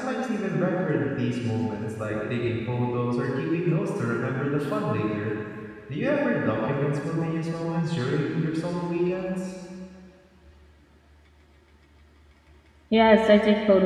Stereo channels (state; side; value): identical; both; correlation 1.00